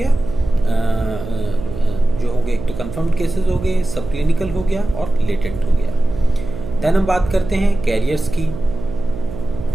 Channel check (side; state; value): right; noise; hum, 10 dB below the sound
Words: जो हो गए, एक तो कंफर्म्ड केसेस हो गए, सब क्लिनिकल हो गया और लेटेंट हो गया। देन हम बात करते हैं कैरियर्स की।